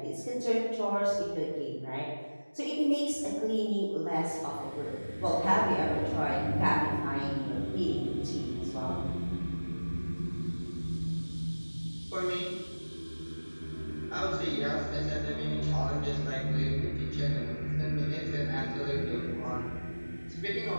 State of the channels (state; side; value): inverted; both; correlation -1.00